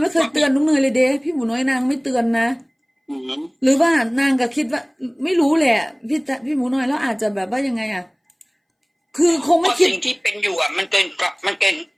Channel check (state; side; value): identical; both; correlation 1.00